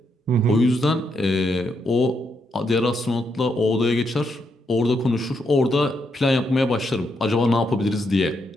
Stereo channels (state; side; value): normal; both; correlation 0.79